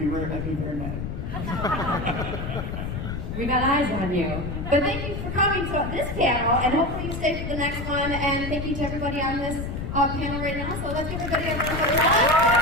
very mad. We got eyes on you. But thank you for coming to this panel, and hopefully you stay for the next one. And thank you to everybody on this panel right now. So let's give everybody a round of applause.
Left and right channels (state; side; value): noise; left; rumble, 5 dB below the sound